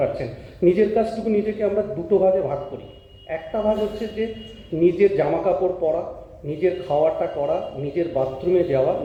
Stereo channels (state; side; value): identical; both; correlation 1.00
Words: নিজের কাজটুকু নিজেকে আমরা 2টো ভাগে ভাগ করি। একটা ভাগ হচ্ছে যে নিজের জামা কাপড় পরা, নিজের খাওয়াটা করা, নিজের বাথরুমে যাওয়া,